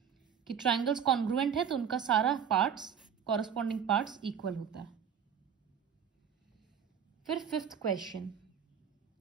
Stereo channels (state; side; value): quieter; left; 7.9 dB